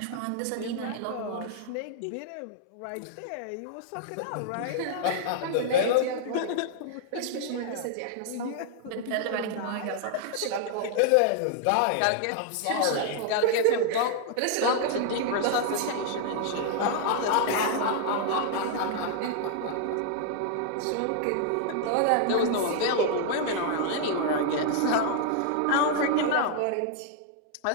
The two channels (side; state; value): both; different; correlation 0.00